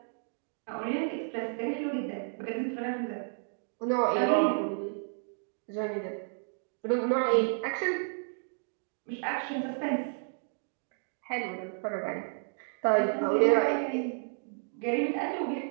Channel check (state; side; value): silent; left; 57 dB below the other